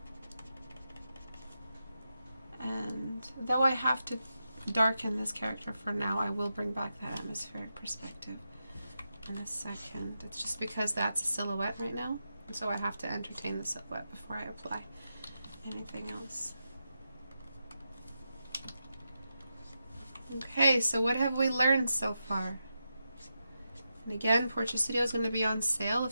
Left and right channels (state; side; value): inverted; both; correlation -0.88